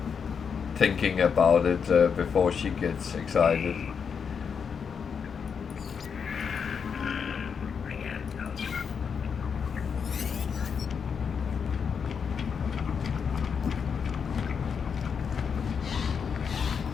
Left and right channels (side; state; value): right; quieter; 6.5 dB